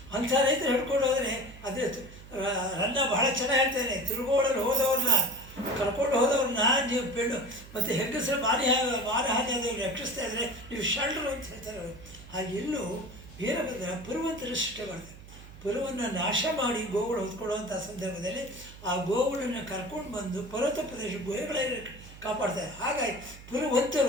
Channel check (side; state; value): right; noise; hum, 18 dB below the sound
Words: ಅಂಥ ರೈತರು ಹಿಡ್ಕೊಂಡು ಹೋದರೆ ಅದೇ ರನ್ನ ಬಹಳ ಚೆನ್ನಾಗಿ ಹೇಳ್ತಾನೆ, ತಿರುಗೋಡಲು ಹೋದವ್ರನ್ನ ಕರ್ಕೊಂಡು ಹೋದವ್ರನ್ನ ನೀವು ಪೆಣ್ಣು ಮತ್ತು ಹೆಂಗಸರು ಮಾನಹಾನಿ ಆದವ್ರು ರಕ್ಷಿಸ್ತಾ ಇದ್ದರೆ ನೀವು ಶಲ್ರು ಅಂತ ಹೇಳ್ತಾರೆ ಅವರು. ಹಾಗೆ ಇಲ್ಲೂ ವೀರಭದ್ರ ಪುರುವಂತರ ಸೃಷ್ಟಿ ಮಾಡ್ತಾರೆ. ಪುರವನ್ನು ನಾಶ ಮಾಡಿ ಗೋವುಗಳು ಹೊತ್ಕೊಳ್ಳುವಂಥ ಸಂದರ್ಭದಲ್ಲಿ ಆ ಗೋವುಗಳನ್ನು ಕರ್ಕೊಂಡು ಬಂದು ಪರ್ವತ ಪ್ರದೇಶ ಗುಹೆಗಳಲ್ಲಿ ಕಾಪಾಡ್ತಾರೆ. ಹಾಗಾಗಿ